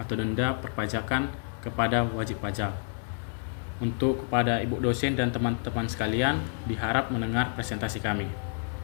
denda perpajakan kepada wajib pajak. Untuk kepada Ibu dosen dan teman-teman sekalian, diharap mendengar presentasi kami.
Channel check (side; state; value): right; silent; 59 dB below the other